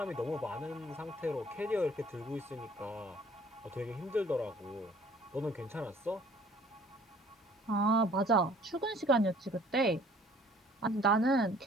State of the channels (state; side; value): normal; both; correlation 0.54